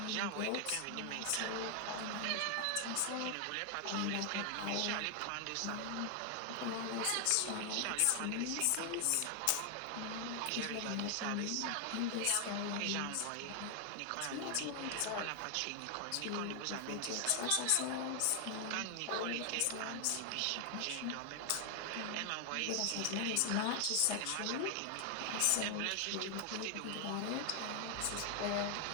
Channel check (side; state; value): both; different; correlation 0.00